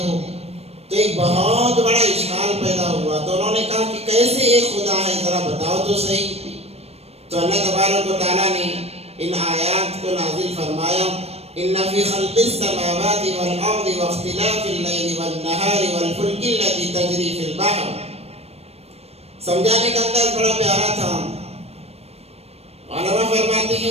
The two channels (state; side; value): late; left; 0.30 ms